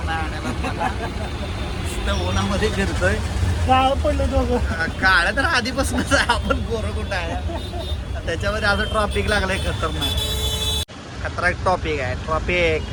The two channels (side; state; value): both; identical; correlation 1.00